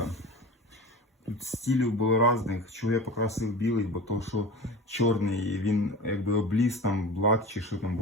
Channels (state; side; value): normal; both; correlation 0.33